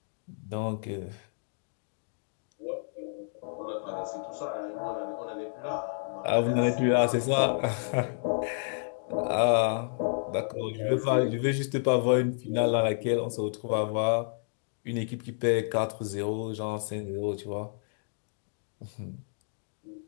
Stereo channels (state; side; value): silent; right; digital silence